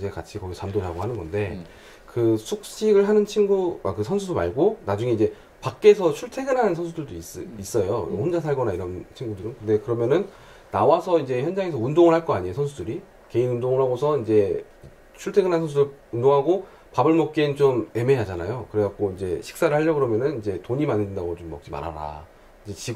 같이 거기 잠도 자고 하는 건데 그 숙식을 하는 그 선수 말고 나중에 이제 밖에서 출퇴근하는 선수들도 있어요. 혼자 살거나 이런 친구들은. 근데 그러면은 나와서 이제 현장에서 운동을 할 거 아니에요, 선수들이. 개인 운동을 하고서 이제 출퇴근하는 선수들 운동하고 밥을 먹기엔 좀 애매하잖아요. 그래갖고 이제 식사를 하려고 그러면은 이제 돈이 많이 든다고 좀 먹지 말아라. 이제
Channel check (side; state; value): both; identical; correlation 1.00